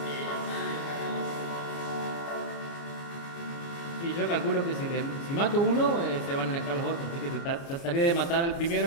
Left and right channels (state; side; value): late; right; 29 ms